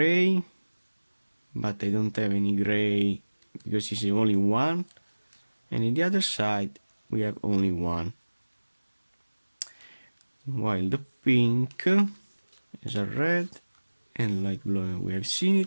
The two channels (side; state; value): both; inverted; correlation -1.00